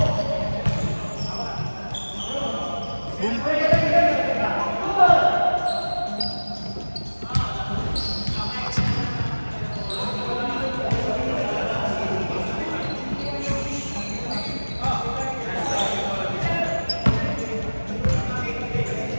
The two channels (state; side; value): inverted; both; correlation -1.00